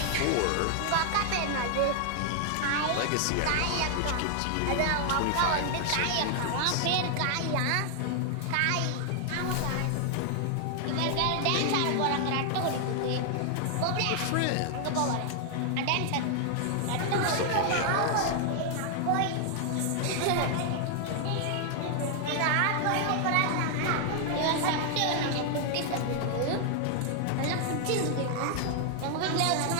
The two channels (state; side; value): different; both; correlation 0.00